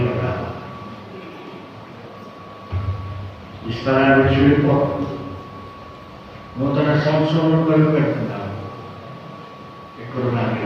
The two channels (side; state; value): both; identical; correlation 1.00